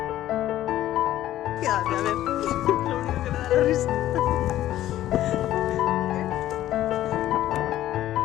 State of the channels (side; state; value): right; quieter; 13.5 dB